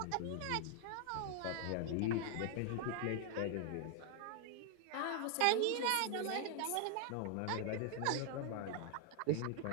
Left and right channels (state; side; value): different; both; correlation 0.00